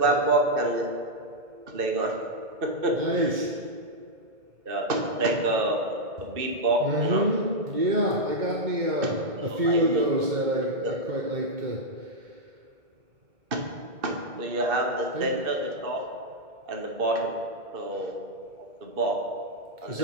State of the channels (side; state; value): left; late; 2.1 ms